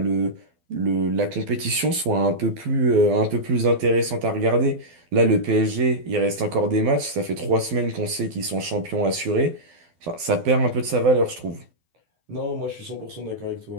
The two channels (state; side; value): late; left; 12 ms